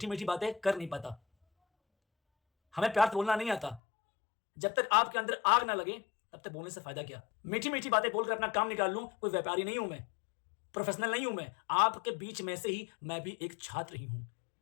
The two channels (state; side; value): drops out; right; at 3.8 s